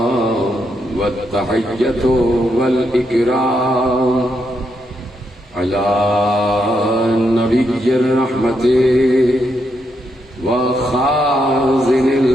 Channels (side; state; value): both; normal; correlation 0.80